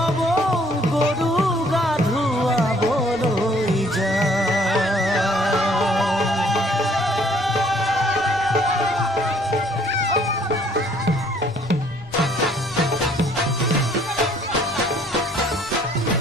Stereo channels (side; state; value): right; noise; rumble, 23 dB below the sound